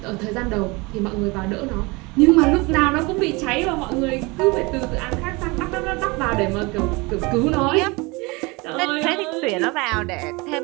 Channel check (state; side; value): quieter; left; 25.7 dB